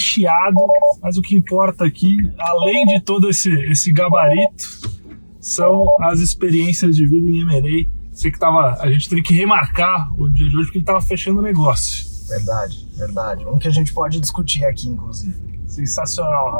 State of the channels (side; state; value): both; inverted; correlation -1.00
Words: mas o que importa aqui, além de todo esse gabarito, são as experiências de vida em M&A. Sei que a gente teve que remarcar o dia de hoje porque ele estava fechando o negócio. Verdade. Um que a gente pode discutir aqui, inclusive. Sensacional,